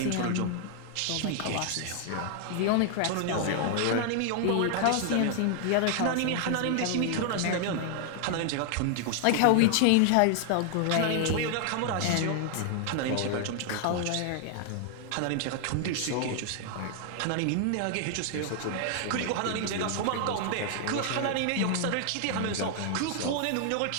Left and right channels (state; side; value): different; both; correlation 0.00